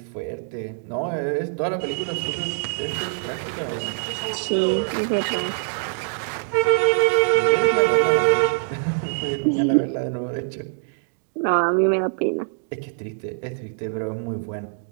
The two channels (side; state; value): left; silent; digital silence